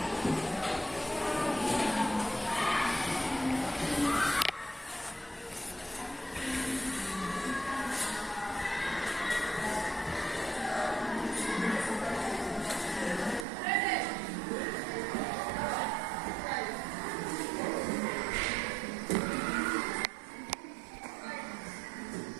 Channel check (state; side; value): drops out; left; at 13.5 s